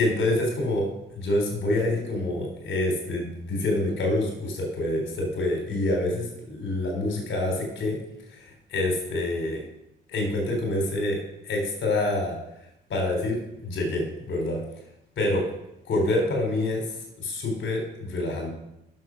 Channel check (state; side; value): normal; both; correlation 0.57